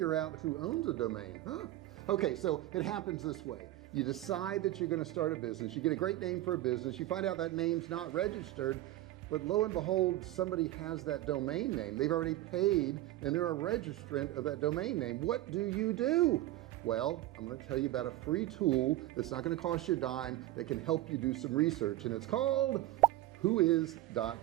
out who owns a domain. Okay, so it happens this way. You decide that you're going to start a business, you get a great name for a business, you find out that name's not registered, but lo and behold, somebody has that domain name. They've already paid and they're a registrant of that domain name. What do? Well, I'm going to tell you about a free tool that's not going to cost you a dime, that can help you do some research, and it's called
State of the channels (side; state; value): left; quieter; 15.5 dB